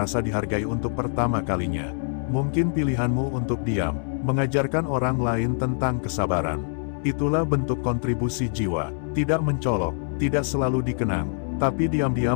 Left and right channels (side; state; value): right; silent; digital silence